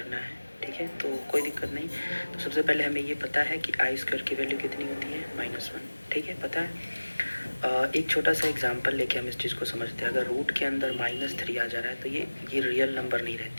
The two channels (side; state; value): both; inverted; correlation -1.00